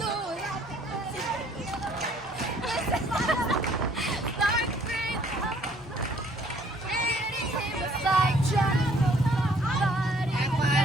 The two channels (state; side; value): normal; both; correlation 0.60